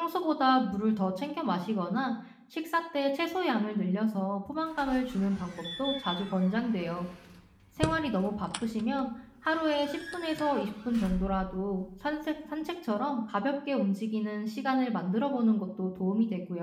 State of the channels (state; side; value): identical; both; correlation 1.00